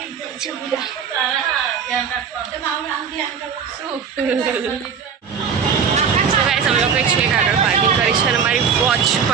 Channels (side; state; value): left; quieter; 6.8 dB